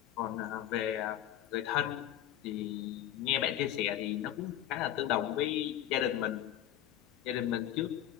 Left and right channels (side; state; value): right; quieter; 12.1 dB